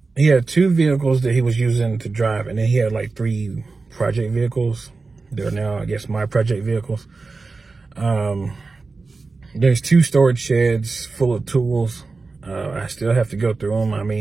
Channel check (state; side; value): quieter; left; 4.0 dB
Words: 2 vehicles that he was using to drive, and then he had like 3 project vehicles. They're now, I guess, my project vehicles. There's 2 storage sheds full of tools. I still have to go through them. I